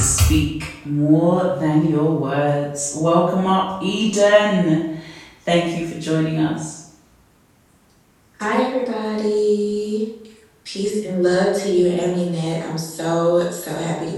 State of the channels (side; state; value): both; identical; correlation 1.00